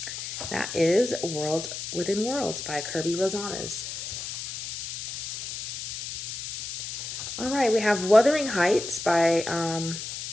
That is Worlds Within Worlds by Kirby Rosanna's. All right, we have Wuthering Heights by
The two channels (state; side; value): noise; left; hiss, 7 dB below the sound